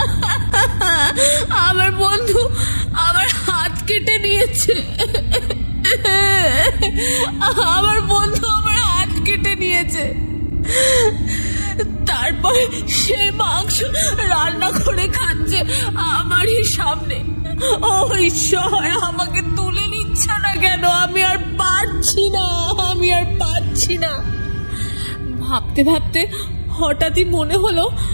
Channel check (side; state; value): both; inverted; correlation -1.00